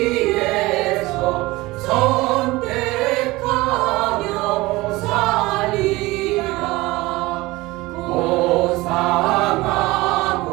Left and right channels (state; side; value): quieter; left; 20.6 dB